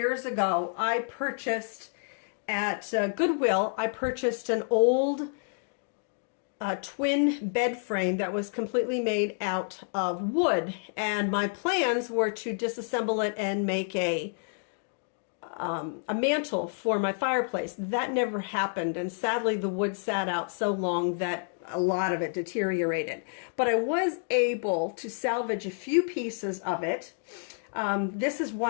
ago, I purchased at Goodwill, I purchased an old twin bed frame that was completely made out of wood. And my plans were to disassemble it and make a mantle for my fireplace. That never happened, and sadly the wood sat out so long that a lot of it deteriorated. But I was able to salvage a few pieces of it. This is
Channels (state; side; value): silent; right; digital silence